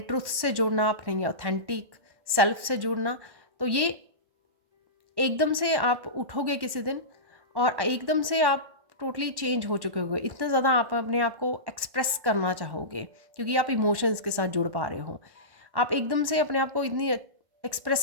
ट्रुथ से जुड़ना, अपने ऑथेंटिक सेल्फ से जुड़ना। तो ये एकदम से आप उठोगे किसी दिन और एकदम से आप टोटली चेंज हो चुके होगे, इतना ज़्यादा आप अपने आप को एक्सप्रेस करना चाहोगे क्योंकि आप इमोशंस के साथ जुड़ पा रहे हो। आप एकदम से अपने आप को इतनी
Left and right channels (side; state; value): left; late; 1.1 ms